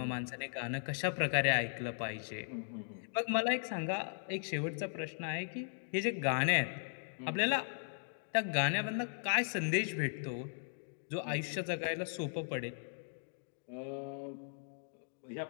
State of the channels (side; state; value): right; silent; digital silence